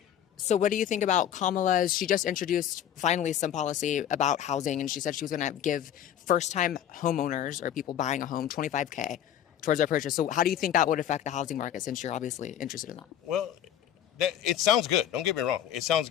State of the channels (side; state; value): right; quieter; 10.3 dB